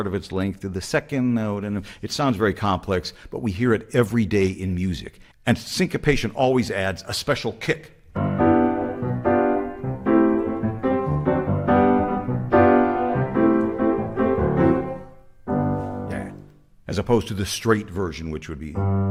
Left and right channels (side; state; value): both; identical; correlation 1.00